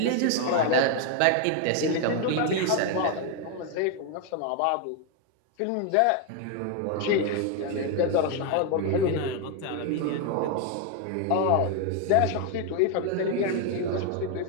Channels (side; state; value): both; different; correlation 0.01